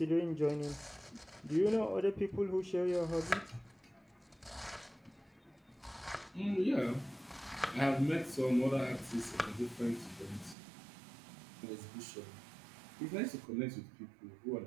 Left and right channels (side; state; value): left; drops out; at 10.6 s